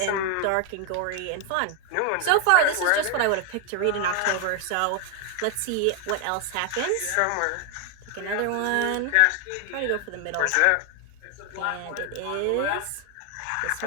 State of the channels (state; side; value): different; both; correlation 0.00